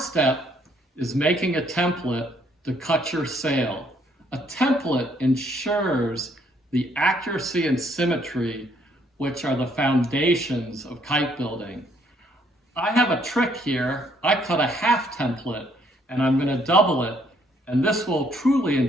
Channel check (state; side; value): normal; both; correlation 0.67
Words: step is making a template to cut your sail. A template ensures the accuracy and symmetry, which are the foundations of kite building. I have a trick here. I cut a half template and I'm going to double it, and this will truly